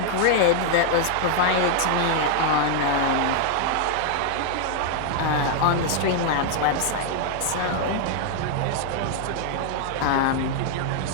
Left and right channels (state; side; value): different; both; correlation 0.00